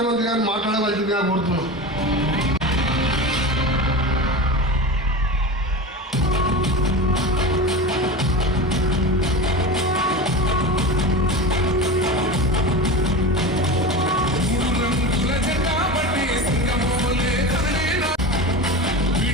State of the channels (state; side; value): normal; both; correlation 0.27